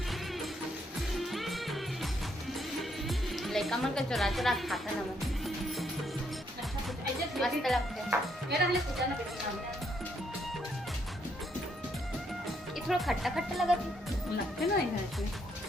लड़का मन का चुरा चुरा खाता ना मन, मस्त लगता है। ये थोड़ा खट्टा खट्टा लगा लगते ना इसमें।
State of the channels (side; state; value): both; normal; correlation 0.73